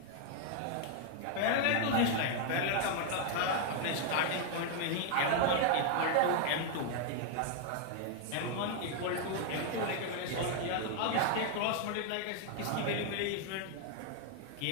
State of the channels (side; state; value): both; different; correlation 0.00